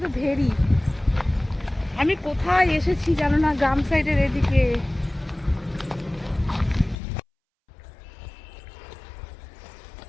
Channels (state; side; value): drops out; right; at 7.0 s